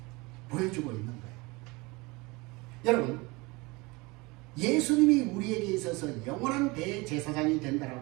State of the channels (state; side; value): quieter; left; 24.8 dB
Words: 보여주고 있는 거예요. 여러분, 예수님이 우리에게 있어서 영원한 대제사장이